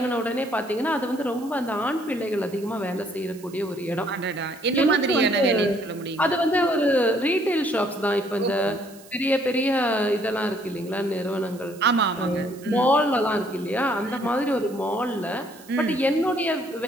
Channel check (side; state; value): right; noise; hiss, 22 dB below the sound